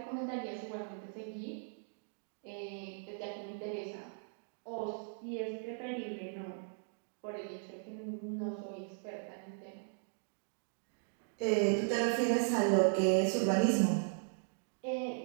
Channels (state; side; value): silent; left; digital silence